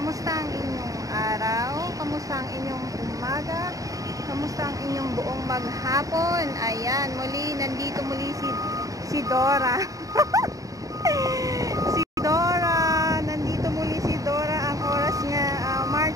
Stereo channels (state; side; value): late; left; 0.16 ms